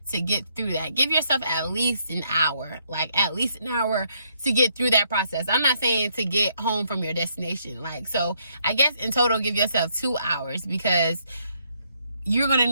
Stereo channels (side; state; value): both; inverted; correlation -0.72